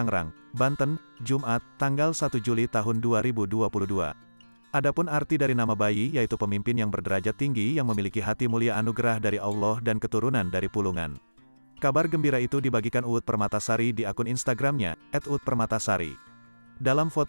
Banten, Jumat, tanggal 1 Juli tahun 2022. Adapun arti dari nama bayi yaitu pemimpin yang berderajat tinggi yang memiliki hati mulia anugerah dari Allah dan keturunan dari Pulungan. Kabar gembira itu dibagikan Uut Permatasari di akun Instagramnya, @uutpermatasari. Dalam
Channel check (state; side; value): inverted; both; correlation -1.00